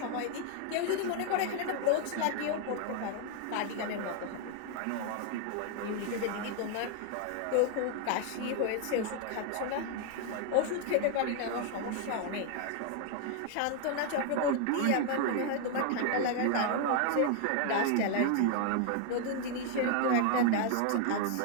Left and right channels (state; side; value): different; both; correlation 0.00